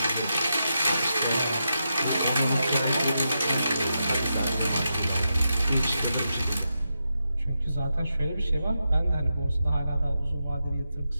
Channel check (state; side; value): inverted; both; correlation -0.86